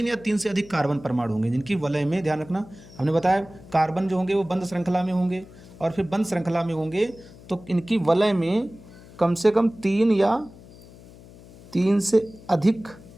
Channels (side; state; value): left; noise; hum, 20 dB below the sound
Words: या 3 से अधिक कार्बन परमाणु होंगे, जिनकी वलय में, ध्यान रखना हमने बताया कार्बन जो होंगे वो बंद श्रृंखला में होंगे, और फिर बंद श्रृंखला में होंगे तो इनकी वलय में कम से कम 3 या 3 से अधिक